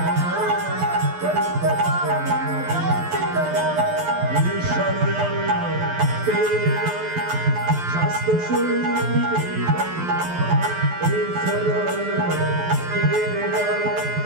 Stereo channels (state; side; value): late; left; 12 ms